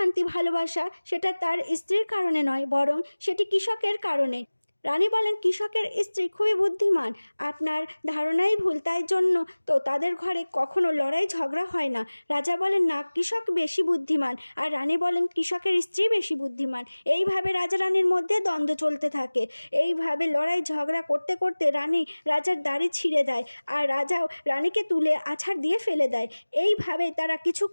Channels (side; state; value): both; inverted; correlation -1.00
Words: ভালোবাসা সেটা তার স্ত্রীর কারণে নয়, বরং সেটি কৃষকের কারণে। রানী বলেন, কৃষকের স্ত্রী খুবই বুদ্ধিমান, আপনার ধারণাই ভুল, তাই জন্য তো তাদের ঘরে কখনো লড়াই ঝগড়া হয় না। রাজা বলেন, না, কৃষক বেশি বুদ্ধিমান। আর রানী বলেন, কৃষকের স্ত্রী বেশি বুদ্ধিমান। এইভাবে রাজা রানীর মধ্যে দ্বন্দ্ব চলতে থাকে। এইভাবে লড়াই ঝগড়া করতে করতে রানী রাজার দাড়ি ছিঁড়ে দেয়, আর রাজাও রানীকে তুলে আছাড় দিয়ে ফেলে দেয়। এইভাবে তারা